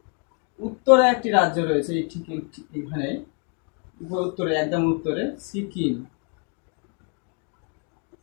উত্তরে একটি রাজ্য রয়েছে, ঠিক এখানে উত্তরে, একদম উত্তরে সিকিম।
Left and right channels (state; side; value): quieter; right; 39.7 dB